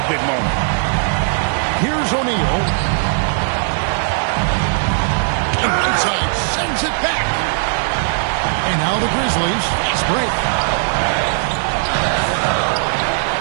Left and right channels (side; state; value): left; silent; digital silence